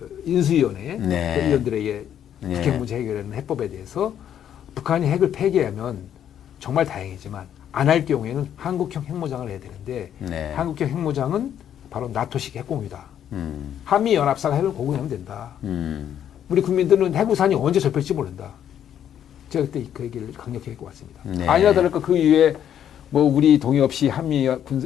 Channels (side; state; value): right; quieter; 9.8 dB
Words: 인수위원회 그 의원들에게 북핵 문제 해결하는 해법에 대해서 북한이 핵을 폐기하면 정말 다행이지만 안 할 경우에는 한국형 핵무장을 해야 되는데 네. 한국형 핵무장은 바로 나토식 핵공유다. 한미 연합사가 핵을 공유하면 된다. 우리 국민들은 핵우산이 언제 접힐지 모른다. 제가 그때 그 얘기를 강력히 했고 왔습니다. 네. 아니나 다를까 그 이후에 뭐 우리 동의 없이 한미